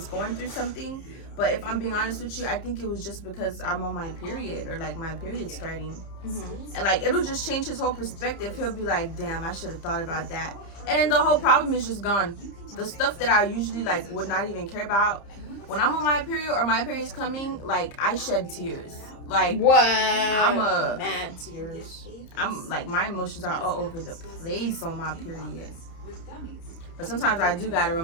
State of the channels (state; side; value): late; right; 30 ms